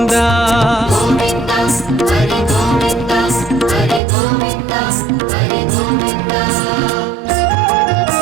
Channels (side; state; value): left; drops out; at 4.0 s